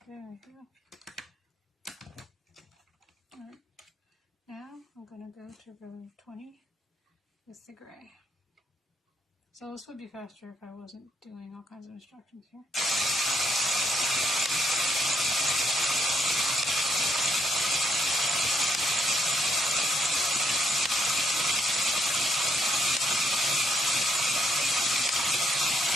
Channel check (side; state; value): both; normal; correlation 0.74